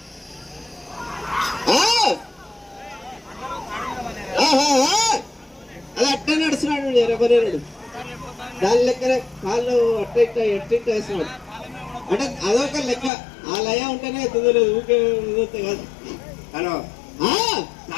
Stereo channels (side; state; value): right; drops out; at 13.1 s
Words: అది అట్లా నడుస్తున్నాడు ఎరబరేరుడు. దాని లెక్కనే కాళ్ళు అట్ట ఎట్ట వేస్తున్నాడు అంటే అదొక లెక్క. ఆ లయ ఉంటేనే ఎత్తుదలేదు, ఊకే కాదు. హలో,